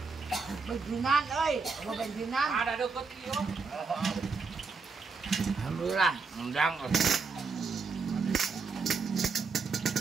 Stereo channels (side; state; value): left; quieter; 4.7 dB